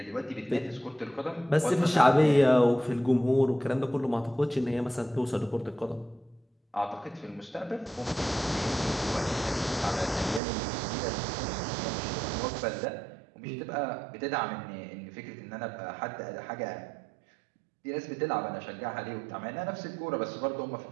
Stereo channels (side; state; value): left; drops out; at 10.4 s